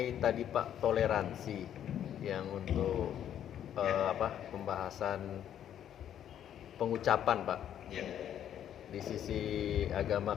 tadi Pak toleransi yang untuk pembahasan pengucapan Pak. Ya. Di sisi agama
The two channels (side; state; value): right; quieter; 10.2 dB